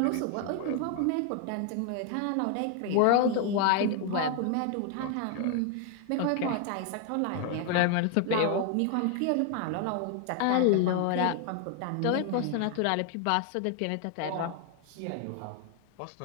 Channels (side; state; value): both; different; correlation 0.00